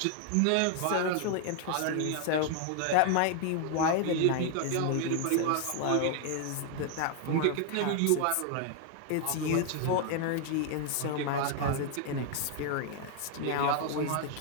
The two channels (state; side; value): different; both; correlation 0.00